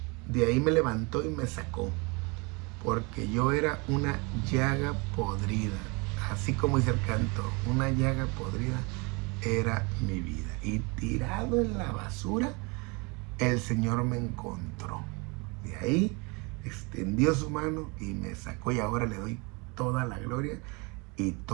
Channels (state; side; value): quieter; left; 29.2 dB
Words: De ahí me levantó y me sacó. Porque yo era una llaga podrida. Así como dice el canto, una llaga podrida era mi vida. Y tirado en la basura, el Señor me encontró. De ahí extendió su mano y me sacó, y ahora le doy toda la gloria y